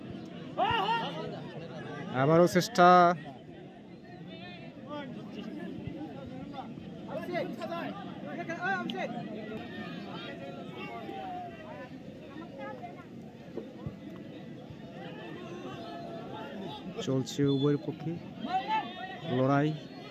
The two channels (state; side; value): identical; both; correlation 1.00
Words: চেষ্টা। চলছে উভয়ের পক্ষে লড়াই।